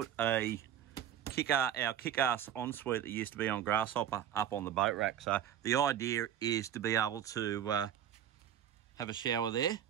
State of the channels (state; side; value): quieter; left; 10.0 dB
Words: a our kick-ass ensuite that used to be on Grasshopper up on the boat rack. So the idea is to be able to have a shower there